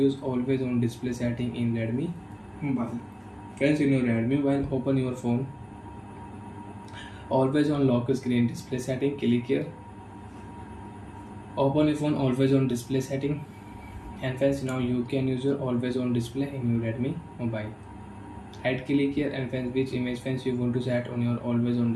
always on display setting in Redmi mobile. Friends, in your Redmi mobile, open your phone. Always on lock screen display setting, click here. Open your phone always on display setting, and friends now you can use your always on display in your Redmi mobile. Right click here, and friends which image friends you want to set on your always on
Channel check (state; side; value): identical; both; correlation 1.00